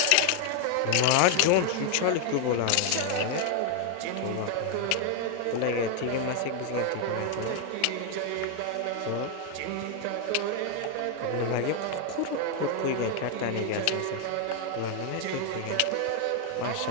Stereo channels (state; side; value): different; both; correlation 0.00